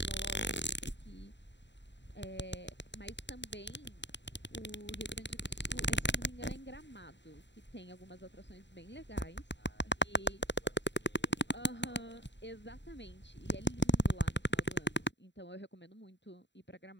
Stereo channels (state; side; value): late; right; 0.52 ms